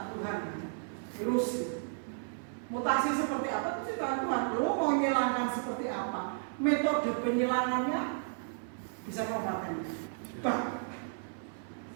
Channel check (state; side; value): silent; left; 55 dB below the other